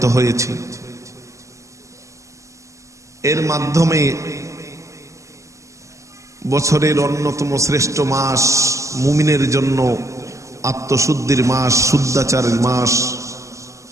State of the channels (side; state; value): left; late; 0.15 ms